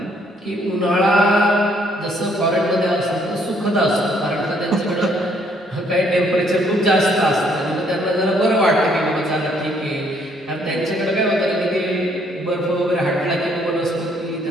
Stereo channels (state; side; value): normal; both; correlation 0.67